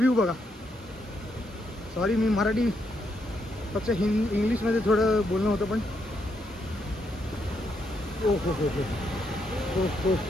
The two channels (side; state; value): both; normal; correlation 0.78